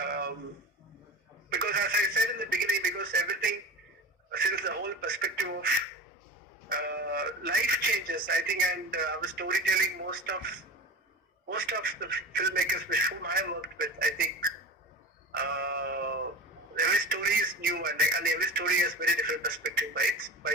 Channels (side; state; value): both; normal; correlation 0.32